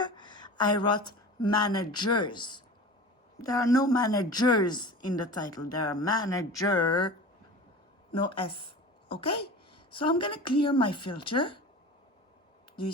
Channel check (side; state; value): both; normal; correlation 0.35